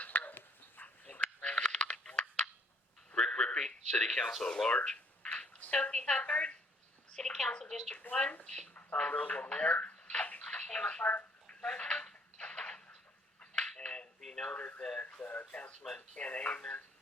4. Rick Rippey, City Council at Large. Sophie Hubbard, City Council District 1. Tom Rosewell, Mayor. Emma Clark, President. And be noted that Councilman Ken Amon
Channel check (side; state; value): both; normal; correlation 0.63